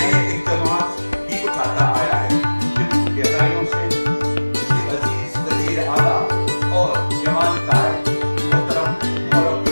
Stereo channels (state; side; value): inverted; both; correlation -1.00